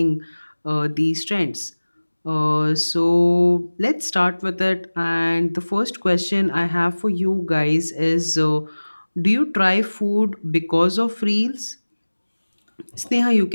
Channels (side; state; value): both; inverted; correlation -1.00